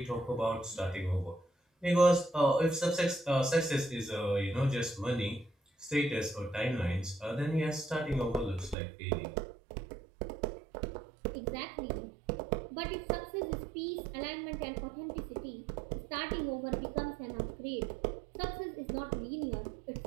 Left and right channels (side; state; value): left; drops out; at 8.8 s